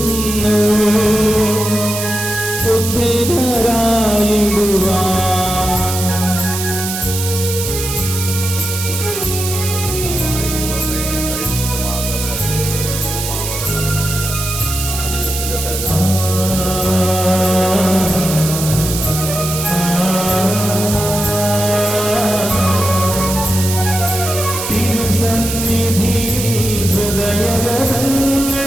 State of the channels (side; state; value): right; noise; hiss, 5 dB below the sound